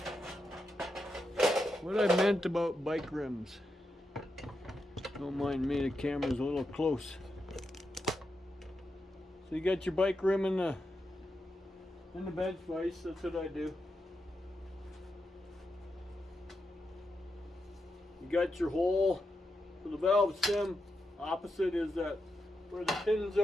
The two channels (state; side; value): normal; both; correlation 0.86